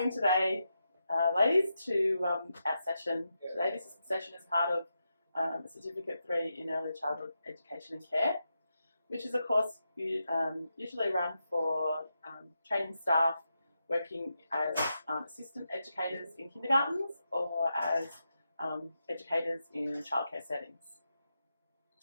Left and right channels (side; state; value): both; inverted; correlation -0.86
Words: today, ladies, to our session. Today, this session is part of Certificate 3 in Early Childhood Education and Care, which is a course usually run for training staff working as assistant educators in kindergartens or as educators in childcare settings.